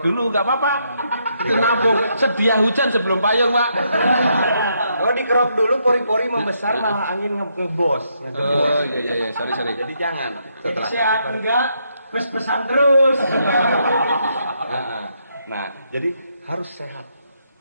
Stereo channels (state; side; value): inverted; both; correlation -0.76